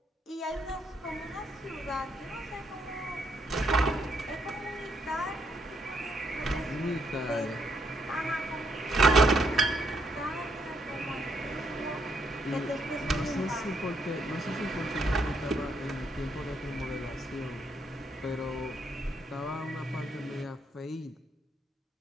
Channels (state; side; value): normal; both; correlation 0.74